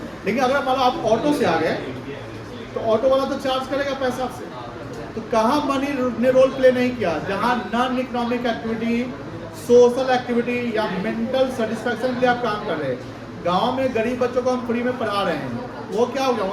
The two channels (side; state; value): both; identical; correlation 1.00